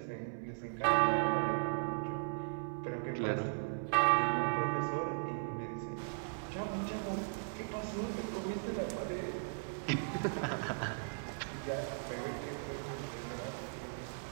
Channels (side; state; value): left; silent; 53 dB below the other